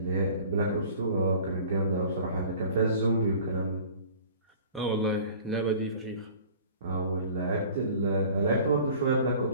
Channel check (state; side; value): inverted; both; correlation -0.46